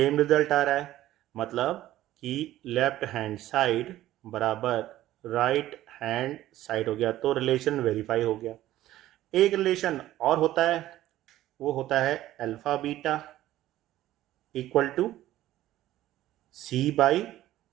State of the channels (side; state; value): left; quieter; 14.4 dB